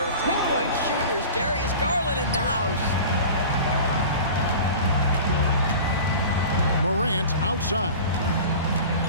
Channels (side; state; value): both; inverted; correlation -0.37